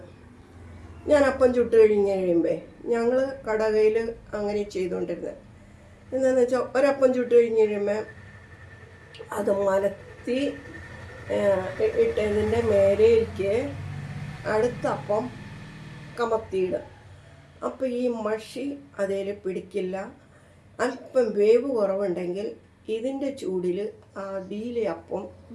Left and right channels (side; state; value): both; identical; correlation 1.00